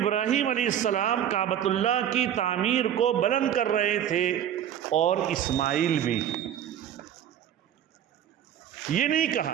علیہ السلام کعبۃ اللہ کی تعمیر کو بلند کر رہے تھے، اور اسماعیل بھی۔ یہ نہیں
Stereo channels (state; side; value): quieter; left; 10.1 dB